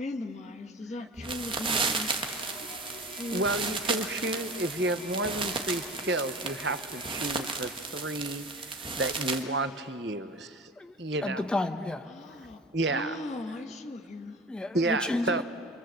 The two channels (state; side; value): normal; both; correlation 0.37